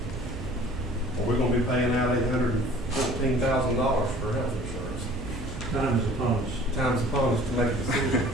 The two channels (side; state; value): both; normal; correlation 0.49